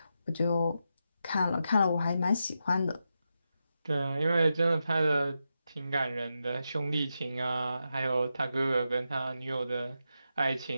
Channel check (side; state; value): both; inverted; correlation -0.87